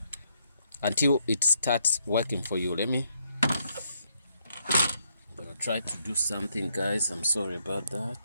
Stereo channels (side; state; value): both; inverted; correlation -0.74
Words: until it starts working for you. I'm gonna try to do something, guys. I'm sorry about